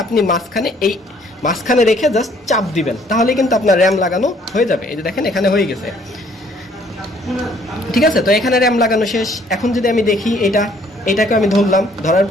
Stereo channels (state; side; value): normal; both; correlation 0.61